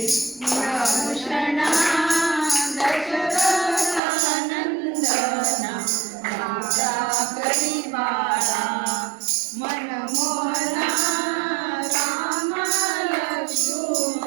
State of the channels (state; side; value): drops out; left; at 4.0 s